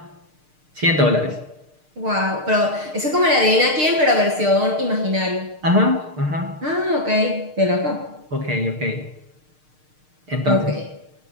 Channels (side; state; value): left; late; 6.6 ms